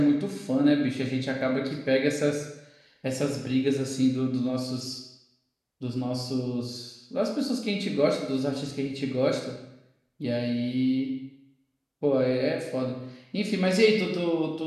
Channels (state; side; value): identical; both; correlation 1.00